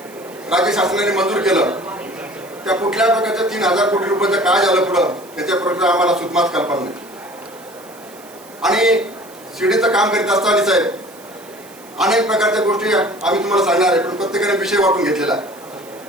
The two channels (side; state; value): right; noise; hiss, 23 dB below the sound